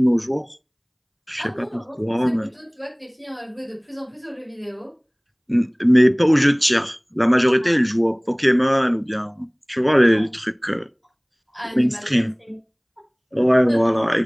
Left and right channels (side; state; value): both; identical; correlation 1.00